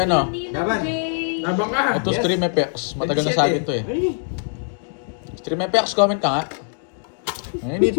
Ninong Laban. J. Nabang ka. Ito Yes. Stream FX. Matagal na sa akin to eh. Ay, Stream FX, comment ka nga. Ay, hindi,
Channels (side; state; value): right; silent; digital silence